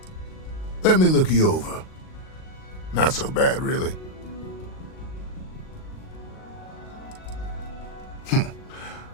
Let me look you over. Not so bad, really.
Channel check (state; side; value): late; right; 38 ms